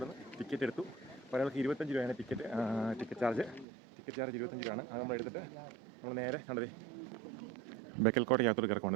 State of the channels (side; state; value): left; drops out; at 3.7 s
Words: ടിക്കറ്റ് എടുത്തു. ഒരാൾക്ക് 25 രൂപയാണ് ടിക്കറ്റ് ചാർജ്. ടിക്കറ്റ് ചാർജ് 25 രൂപയാണ്. അത് നമ്മൾ എടുത്തിട്ട് നമ്മൾ നേരെ കണ്ടതേ ബേക്കൽ കോട്ടയ്ക്കകത്തോട്ട്